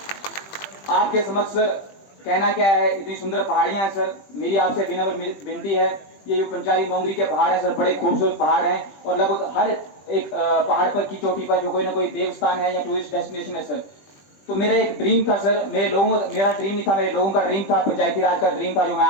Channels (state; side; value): late; right; 21 ms